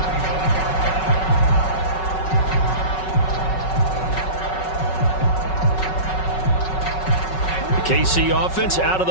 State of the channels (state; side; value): late; right; 5.4 ms